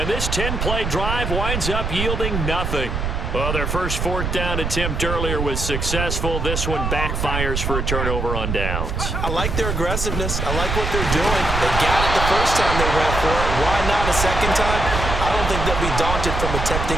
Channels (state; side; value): noise; right; rumble, 2 dB below the sound